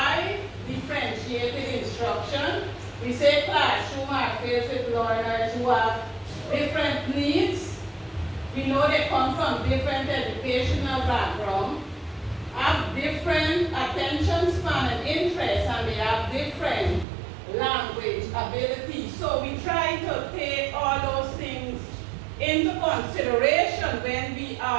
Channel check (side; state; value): left; drops out; at 17.1 s